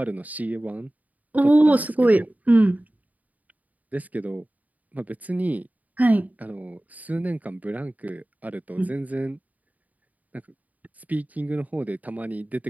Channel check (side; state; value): left; late; 0.075 ms